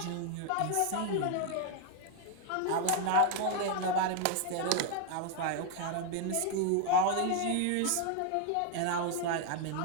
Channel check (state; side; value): different; both; correlation 0.00